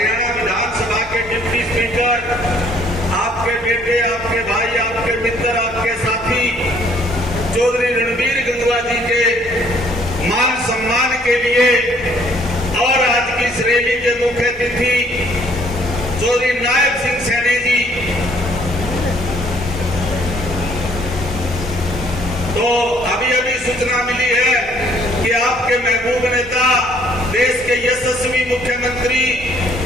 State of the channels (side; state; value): both; normal; correlation 0.62